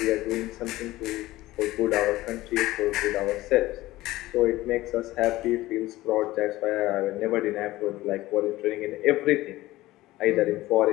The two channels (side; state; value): right; quieter; 17.4 dB